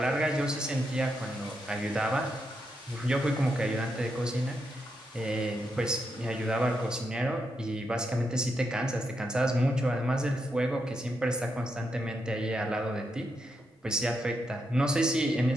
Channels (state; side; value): normal; both; correlation 0.82